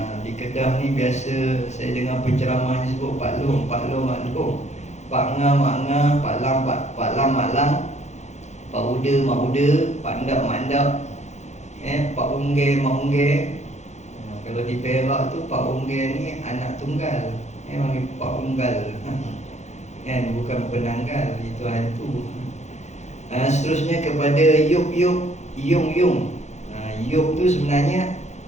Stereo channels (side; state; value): right; late; 0.33 ms